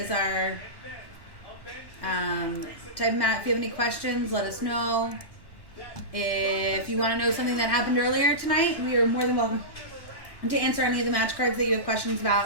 are. Type Matt if you have any questions. Let us know. If you want to know something that happened earlier tonight, we are more than welcome to answer any of the match cards that you have questions about.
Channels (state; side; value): late; right; 1.1 ms